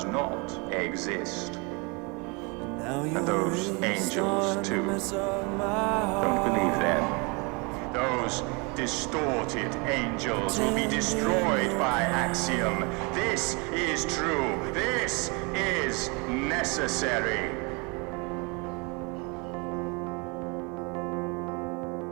not exist. And those angels too. Don't believe them. Those distorted angels will be destroyed by Axiom. This is true. This is necessary.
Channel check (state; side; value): quieter; left; 30.2 dB